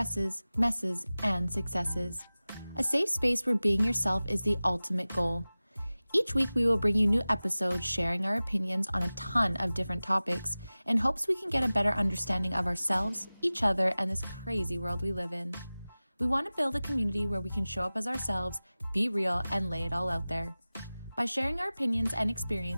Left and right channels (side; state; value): both; inverted; correlation -0.98